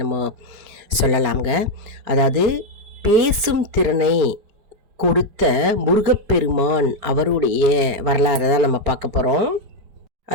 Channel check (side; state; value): left; late; 4.4 ms